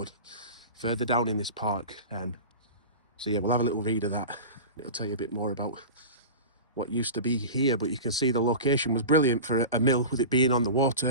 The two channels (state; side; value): inverted; both; correlation -0.31